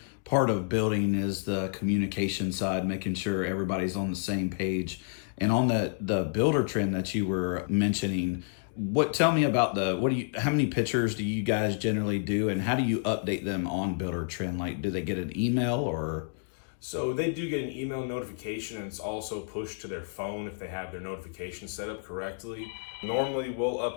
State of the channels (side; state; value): right; silent; digital silence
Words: part of building is the communication side, making sure everybody's on the same page. And on the builder trend that you were mentioning, tell me about how many pictures do you guys generally do, and how do you update them on builder trend? Like, do they get an email or? So they do get an email notification, and it's also pushed to their phone if they have their notifications set up correctly. Normally we'll